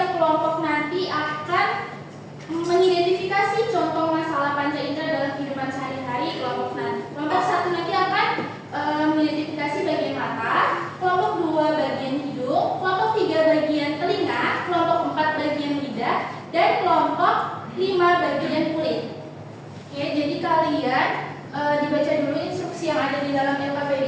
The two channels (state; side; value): identical; both; correlation 1.00